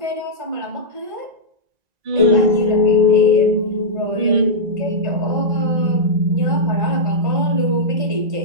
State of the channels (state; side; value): late; left; 1.9 ms